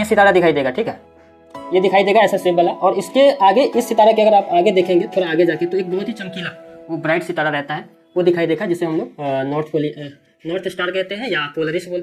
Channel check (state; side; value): identical; both; correlation 1.00